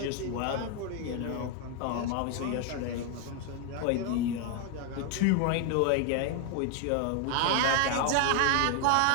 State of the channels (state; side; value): different; both; correlation 0.01